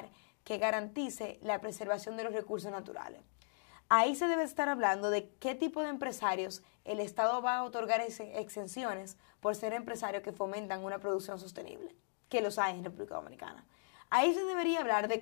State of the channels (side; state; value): right; silent; digital silence